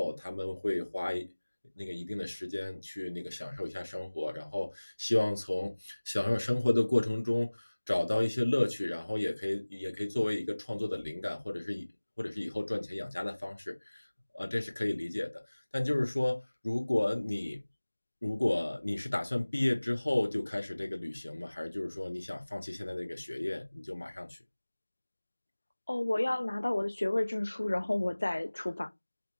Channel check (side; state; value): both; inverted; correlation -1.00